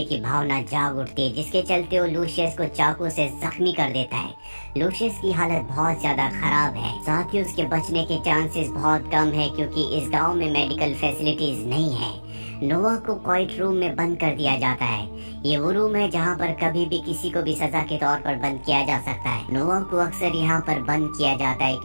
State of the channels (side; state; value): both; inverted; correlation -1.00